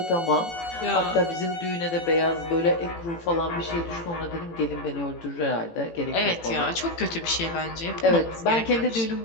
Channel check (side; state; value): right; late; 18 ms